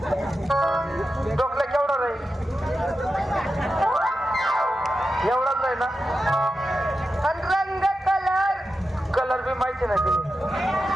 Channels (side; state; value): both; normal; correlation 0.90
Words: टोकल्या केवढा राहील? एवढाच आहे ना. आणि रंग कलर कलर बी माहिती नाही तिने.